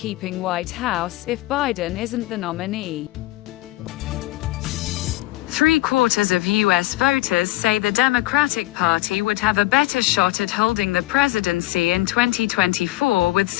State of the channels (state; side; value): quieter; right; 18.6 dB